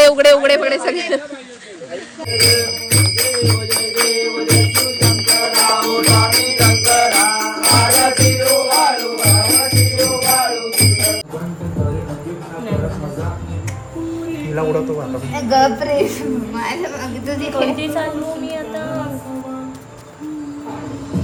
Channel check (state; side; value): identical; both; correlation 1.00